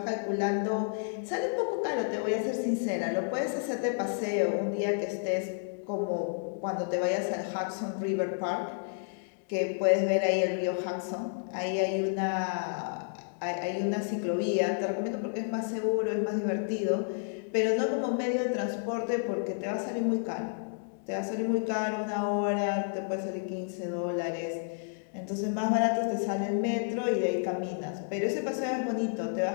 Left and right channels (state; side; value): silent; right; digital silence